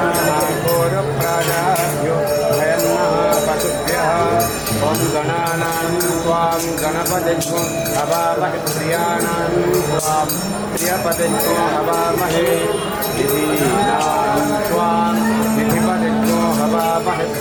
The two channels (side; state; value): both; identical; correlation 1.00